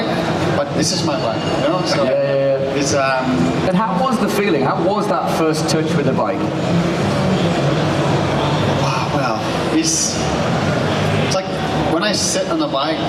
but this is my bike, you know. So it's And how was the feeling? How was that first touch with the bike? Wow, well, it's like when I sit on the bike,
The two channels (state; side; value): identical; both; correlation 1.00